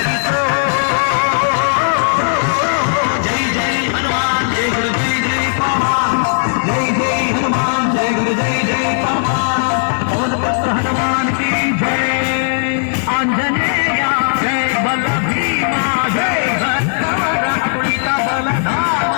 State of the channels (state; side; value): silent; right; 68 dB below the other